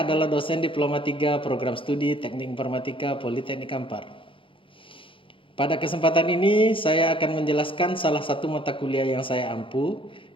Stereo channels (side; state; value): right; late; 0.25 ms